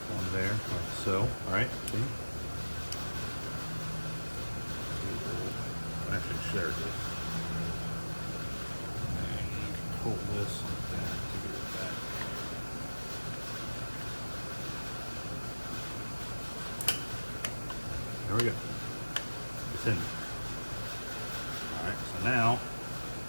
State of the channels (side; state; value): both; inverted; correlation -1.00